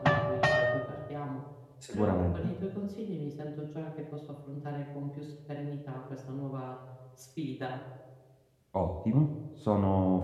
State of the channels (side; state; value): both; identical; correlation 1.00